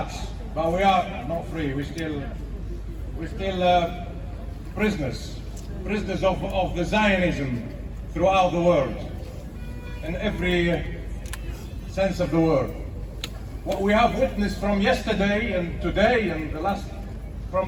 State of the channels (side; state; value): both; identical; correlation 1.00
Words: but we are not free. We're still prisoners of the Zionism throughout the world, in every sense of the word. what we have witnessed from yesterday and today and